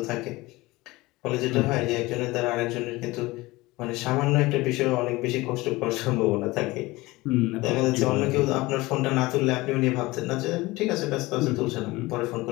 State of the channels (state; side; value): quieter; right; 20.8 dB